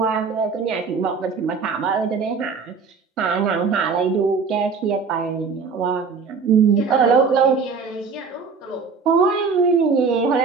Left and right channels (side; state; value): left; quieter; 5.2 dB